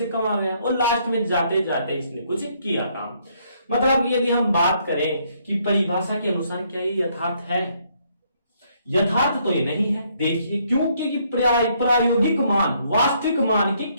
कम आ गया और लास्ट में जाते जाते इसने कुछ किया काम। मतलब यदि हम बात करें कि परिभाषा के अनुसार क्या ये यथार्थ है, यथार्थ तो ये नहीं है। देखिए क्योंकि प्रायोगिक मान वास्तविक मान के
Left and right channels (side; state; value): both; inverted; correlation -0.70